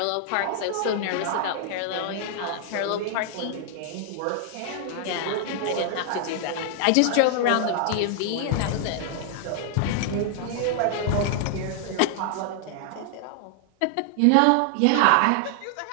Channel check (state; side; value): different; both; correlation 0.00